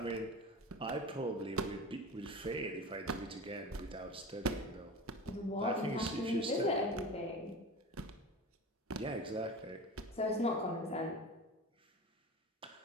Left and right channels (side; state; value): both; normal; correlation 0.31